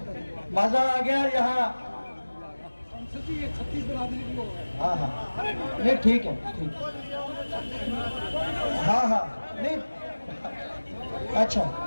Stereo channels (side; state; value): both; inverted; correlation -1.00